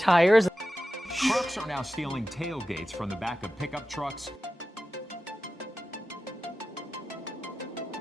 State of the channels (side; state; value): both; normal; correlation 0.93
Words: Trucks are now stealing tailgates from the back of pickup trucks.